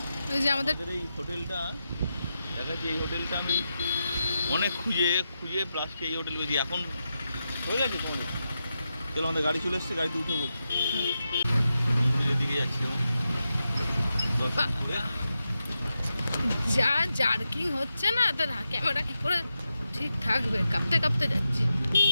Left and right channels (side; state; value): both; inverted; correlation -0.89